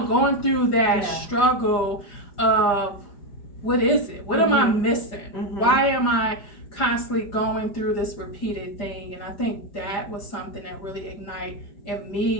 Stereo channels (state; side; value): late; right; 4.9 ms